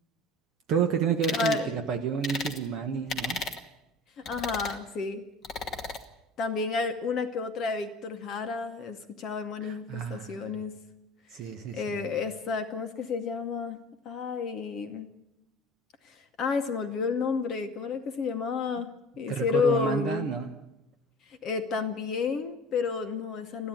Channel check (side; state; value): both; normal; correlation 0.40